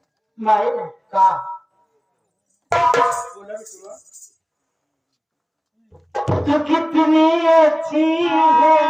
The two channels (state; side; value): identical; both; correlation 1.00